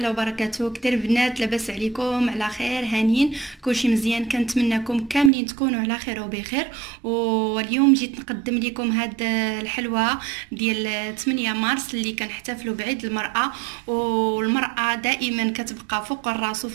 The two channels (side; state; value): left; drops out; at 5.3 s